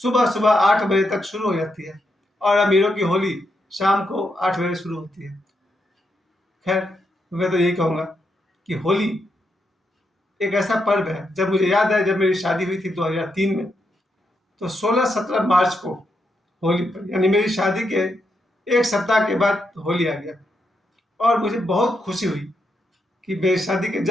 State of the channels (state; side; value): normal; both; correlation 0.82